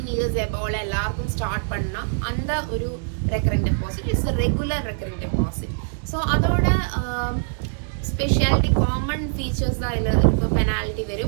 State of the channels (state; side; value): silent; left; digital silence